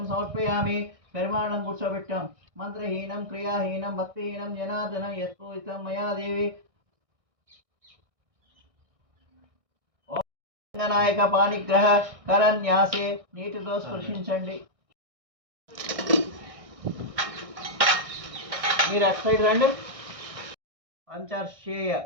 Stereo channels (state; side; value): late; left; 1.6 ms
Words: సమర్పయామి. పరిమాణం కూర్చోబెట్టాం. మంత్రహీనం క్రియాహీనం భక్తిహీనం జనార్దనం యత్పూజితం మయా దేవి. ఓం రంగనాయక పాణిగ్రహ కరన్యాసే. నీటితో స్పృశించండి. మీరు అటు సైడ్ రండి. పంచర్షేయ